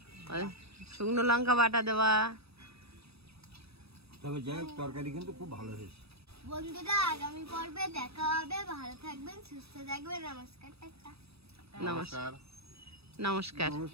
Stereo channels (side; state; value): left; late; 0.78 ms